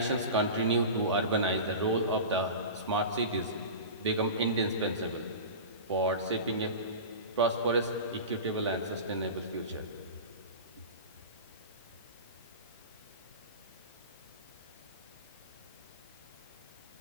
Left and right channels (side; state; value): both; inverted; correlation -0.31